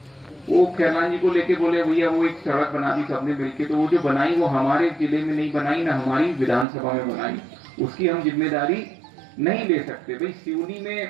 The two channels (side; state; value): left; drops out; at 6.7 s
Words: वो खैरलान जी को लेके बोले भैया वो एक सड़क बना दी सबने मिलके, तो वो जो बनाई वो हमारे जिले में नहीं बनाई, ना हमारी विधानसभा में बनाई, उसकी हम जिम्मेदारी नहीं ले सकते। भाई